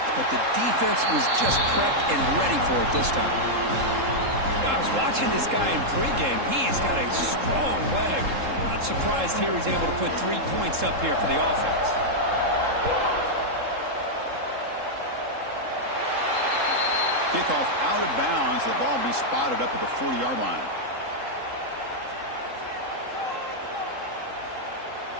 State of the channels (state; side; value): late; left; 3.7 ms